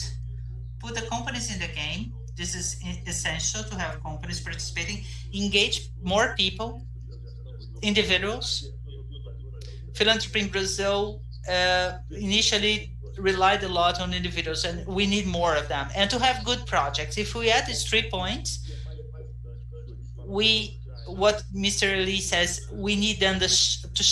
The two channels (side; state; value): both; identical; correlation 1.00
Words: Put the companies in the game. This is essential to have companies participating. Engage more people, individuals. Philanthropy in Brazil initially relied a lot on individuals, and we need more of them. And to have good projects. If we add these 3 points, what Mr. Elie says, we need them to